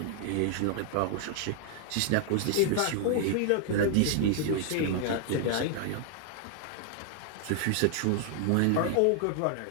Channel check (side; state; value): both; different; correlation 0.00